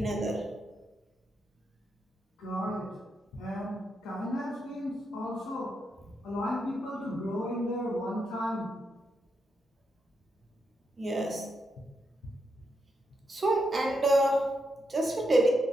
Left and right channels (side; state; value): both; normal; correlation 0.82